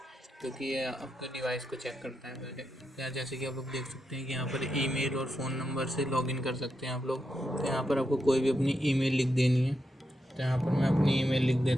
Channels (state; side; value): normal; both; correlation 0.85